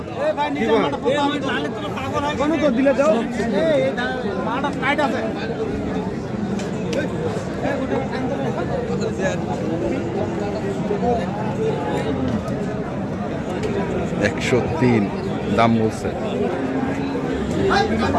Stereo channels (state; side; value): identical; both; correlation 1.00